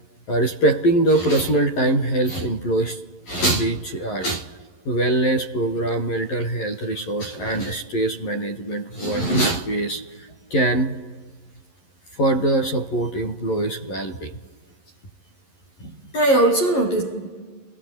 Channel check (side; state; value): right; late; 11 ms